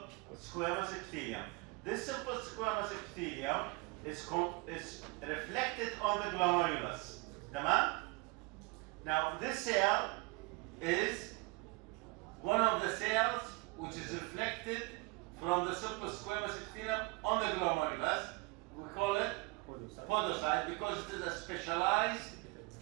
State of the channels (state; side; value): quieter; left; 26.0 dB